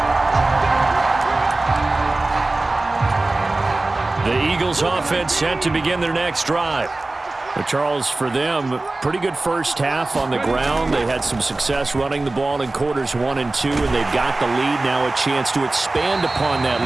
The Eagles offense set to begin their next drive. Charles, for them, pretty good first half on the ground. They had some success running the ball in quarters 1 and 2, and they've got the lead. Now a chance to expand upon that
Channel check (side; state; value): left; quieter; 3.0 dB